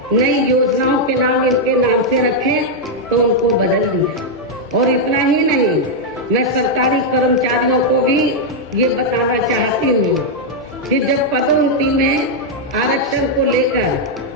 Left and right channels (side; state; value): both; normal; correlation -0.02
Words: नई योजनाओं के नाम इनके नाम से रखे, तो उनको बदल दिया। और इतना ही नहीं, मैं सरकारी कर्मचारियों को भी ये बताना चाहती हूँ कि जब पदोन्नति में आरक्षण को